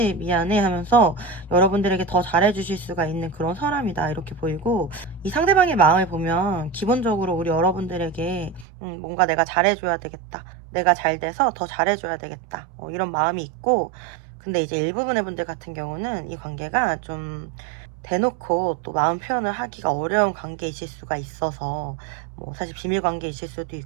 미안해 하면서 여러분들에게 더 잘해주실 수가 있는 그런 사람이다, 이렇게 보이고 들고, 이 상대방의 마음을 보면 기본적으로 우리 여러분들에게 뭔가 내가 잘해줘야 되겠다, 내가 잘 돼서 더 잘해줘야 되겠다, 이런 마음이 있고, 근데 이제 일부분의 분들 같은 경우는 이 관계가 좀 대놓고 또 마음 표현을 하기가 어려운 관계이실 수가 있어서, 뭐 사실 비밀 관계이실 수도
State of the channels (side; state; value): left; drops out; at 8.7 s